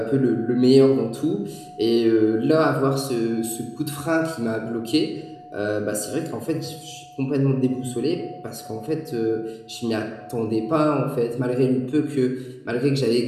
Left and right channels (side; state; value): both; identical; correlation 1.00